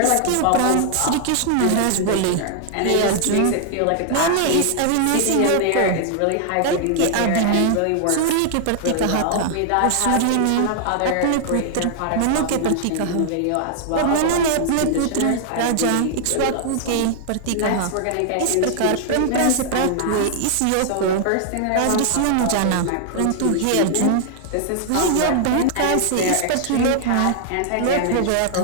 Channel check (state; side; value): different; both; correlation 0.00